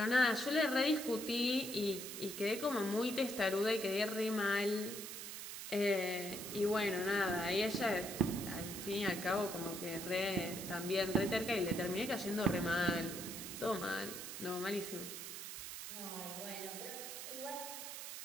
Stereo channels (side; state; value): right; noise; hiss, 8 dB below the sound